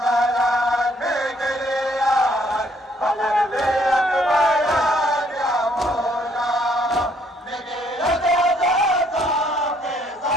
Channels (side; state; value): both; normal; correlation 0.66